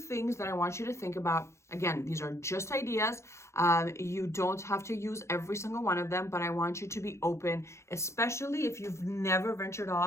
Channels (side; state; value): right; late; 0.13 ms